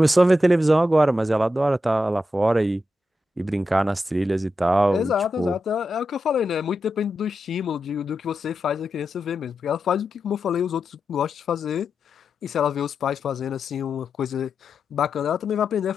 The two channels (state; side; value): normal; both; correlation 0.88